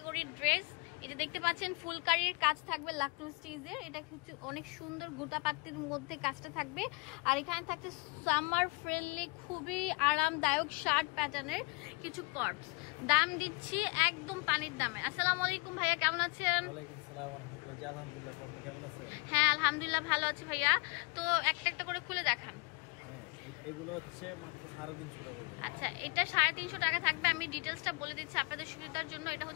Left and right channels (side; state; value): right; quieter; 30.0 dB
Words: ড্রেস। এটা দেখতে পাচ্ছেন ফুলকারির কাজ থাকবে লাকটু স্টিচের, এটা হচ্ছে অনেক সুন্দর গোটাপাত্তির মধ্যে কাজটা থাকবে। আর এখানে থাকছে সামার ফ্রেন্ডলি খুবই আরামদায়ক শার্ট প্যাটার্নের কিছু কর্পস। দাম দিচ্ছি একদম পানির দামে। আসসালামু আলাইকুম ভাইয়া, কেমন আছেন? ওয়ালাইকুম আসসালাম ওয়া রাহমাতুল্লাহি। আলহামদুলিল্লাহ, আপনি কেমন আছেন? হ্যাঁ আলহামদুলিল্লাহ ভালো আছি ভাইয়া। তো একটা একটা করে খুলে দেখান। এগুলো হচ্ছে মাত্র 350 টাকা। আচ্ছা, এটা 350 টাকা থাকবে। আমি ডিটেইলসটা বলে দিচ্ছি আপনাদের সুবিধার জন্য। এটা